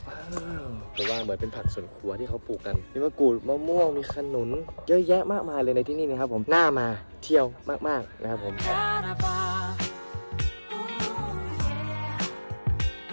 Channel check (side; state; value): both; inverted; correlation -1.00